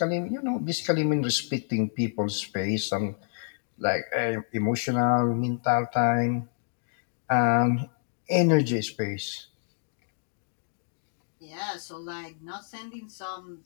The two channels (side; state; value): right; silent; digital silence